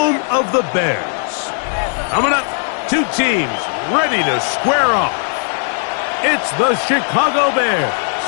of the Bears. Coming up, two teams ready to square off. It's the Chicago Bears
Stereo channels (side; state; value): right; silent; 58 dB below the other